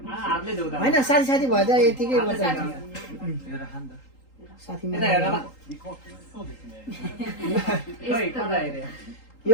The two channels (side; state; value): right; late; 3.8 ms